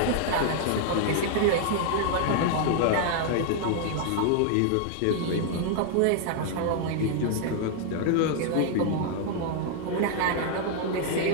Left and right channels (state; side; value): different; both; correlation 0.00